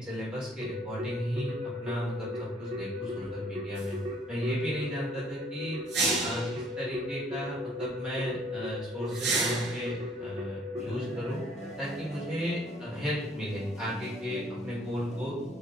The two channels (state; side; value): normal; both; correlation 0.60